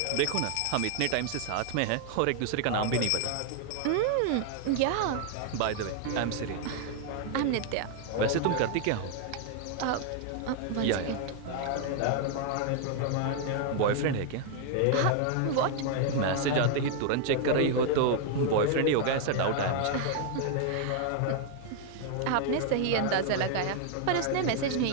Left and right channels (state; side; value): different; both; correlation 0.00